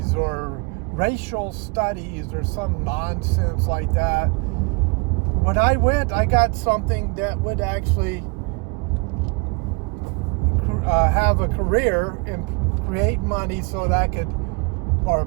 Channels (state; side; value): quieter; left; 30.5 dB